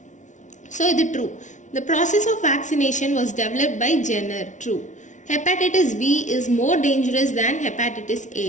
So, it is true. The process of vaccination was developed by Jenner. True. Hepatitis B is more dangerous than hepatitis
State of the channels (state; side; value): late; right; 0.36 ms